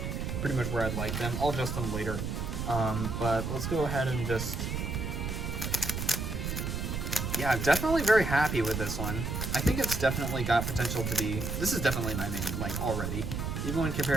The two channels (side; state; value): right; noise; rumble, 3 dB below the sound